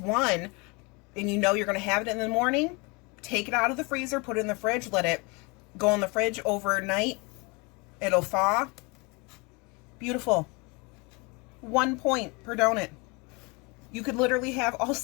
one, and you know you're gonna have it in the morning, take it out of the freezer, put it in the fridge, let it go in the fridge overnight. It'll thaw. Beautiful. 1 point per donut. You could literally have all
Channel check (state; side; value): quieter; right; 28.7 dB